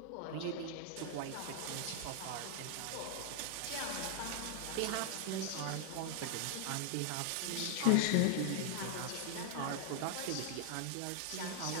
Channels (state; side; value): different; both; correlation 0.00